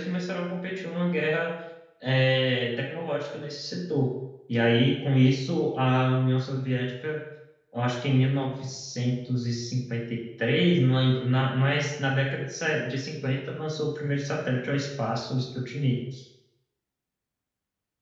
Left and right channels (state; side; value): identical; both; correlation 1.00